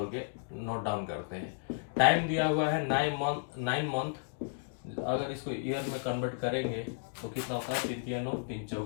के नोट डाउन करते हैं। टाइम दिया हुआ है 9 मंथ, अगर इसको ईयर में कन्वर्ट करेंगे तो कितना होता है, 3 3 9 3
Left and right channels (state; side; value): silent; right; digital silence